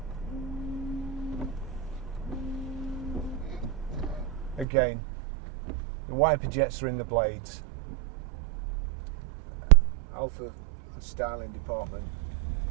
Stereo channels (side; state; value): left; drops out; at 4.7 s